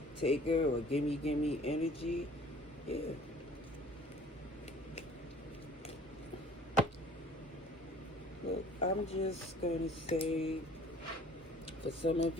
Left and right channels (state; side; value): normal; both; correlation 0.51